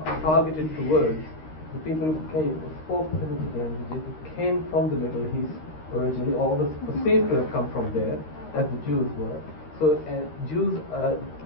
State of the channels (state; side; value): late; right; 13 ms